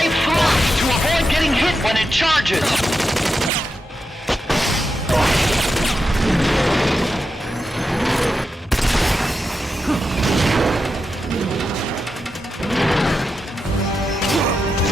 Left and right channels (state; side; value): normal; both; correlation 0.88